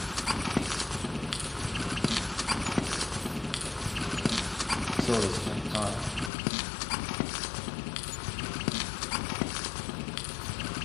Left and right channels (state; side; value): drops out; right; at 6.3 s